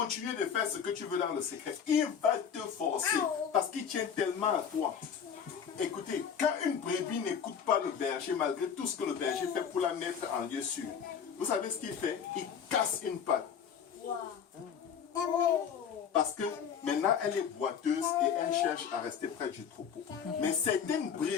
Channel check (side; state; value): right; quieter; 7.5 dB